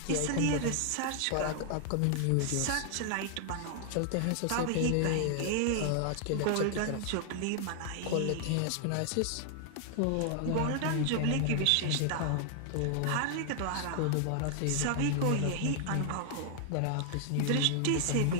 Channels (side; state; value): both; different; correlation 0.00